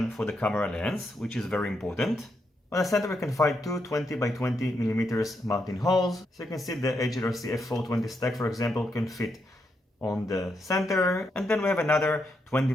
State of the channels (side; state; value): both; normal; correlation 0.81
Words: for the camera lens, which is very important. On the center we can find 2 20 by 20mm mounting holes, so you can see the HLRC F420 stack, for example, can fit on the center, and then we have another 20